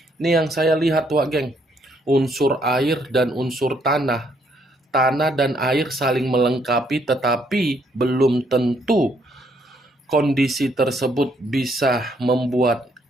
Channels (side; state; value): both; normal; correlation 0.70